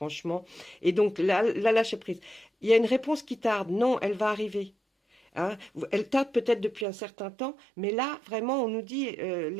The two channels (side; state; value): left; drops out; at 6.9 s